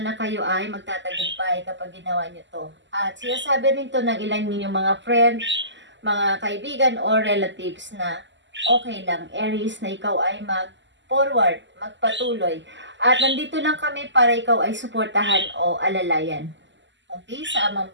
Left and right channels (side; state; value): left; late; 0.53 ms